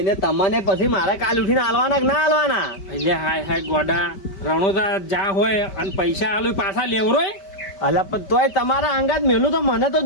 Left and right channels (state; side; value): late; right; 5.1 ms